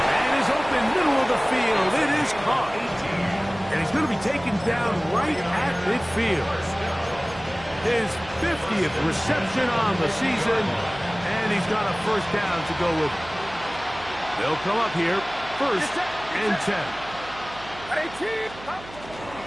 is open middle of the field. It is caught. And he's going to be taken down right at midfield. His 50th reception on the season. And he's got a first down to go with. They'll come up here, 1st and 10. A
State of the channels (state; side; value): noise; right; hum, 17 dB below the sound